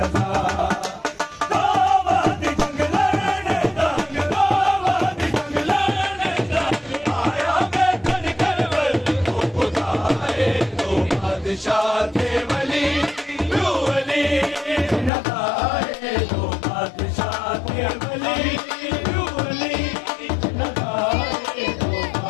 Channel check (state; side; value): drops out; right; at 15.1 s